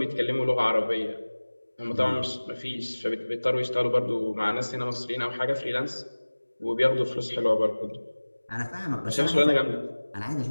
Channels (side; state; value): both; inverted; correlation -1.00